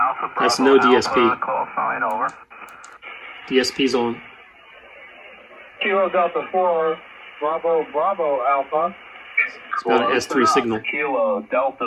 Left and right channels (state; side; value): identical; both; correlation 1.00